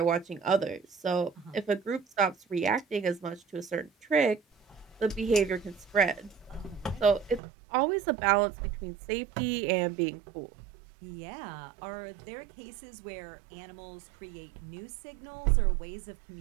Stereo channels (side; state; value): left; drops out; at 7.4 s